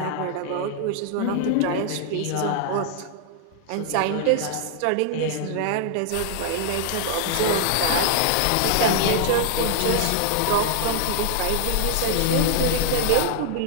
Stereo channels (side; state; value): both; different; correlation -0.01